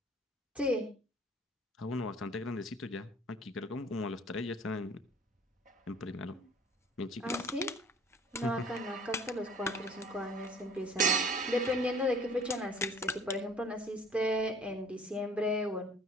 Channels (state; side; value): normal; both; correlation 0.51